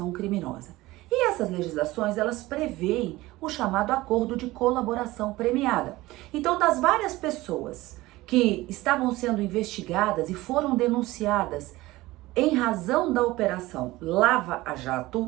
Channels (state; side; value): quieter; left; 18.8 dB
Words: criminosa. E essas legislações, elas preveem o chamado acordo de colaboração premiada. Então, das várias pessoas que estavam sendo investigadas e foram denunciadas em razão da operação Lava